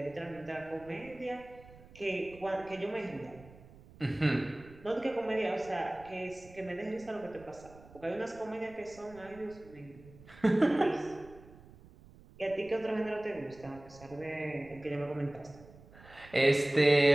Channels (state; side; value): noise; right; rumble, 21 dB below the sound